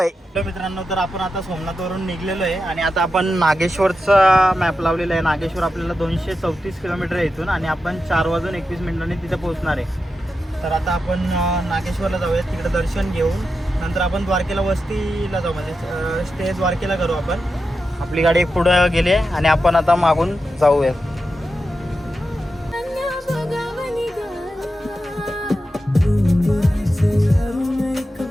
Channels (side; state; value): both; normal; correlation 0.89